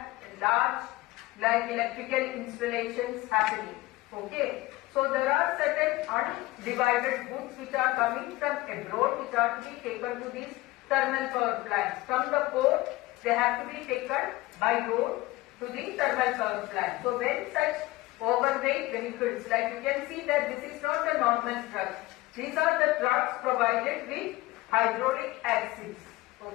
large like electrical installations happening. Okay, so there are certain undivided goods which are coming from abroad, which are to be taken to these thermal power plants. From the port, they have to be taken by road to the thermal power plant. So when such overweight vehicles, like you can see that this is not a normal truck. These are the trucks provided with hydraulic axles.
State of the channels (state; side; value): quieter; right; 19.2 dB